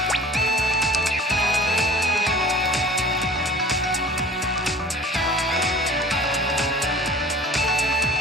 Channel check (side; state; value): both; normal; correlation 0.45